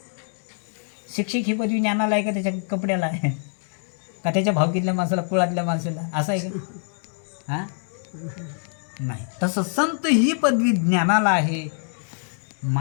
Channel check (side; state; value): right; silent; 57 dB below the other